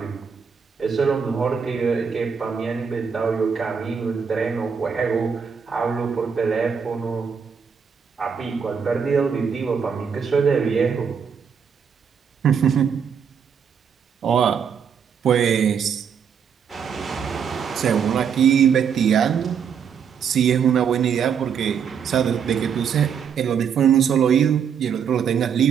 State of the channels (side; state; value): left; quieter; 7.0 dB